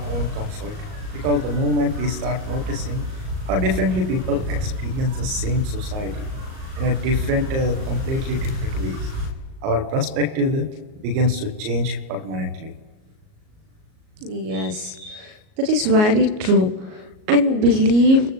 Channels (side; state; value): left; late; 38 ms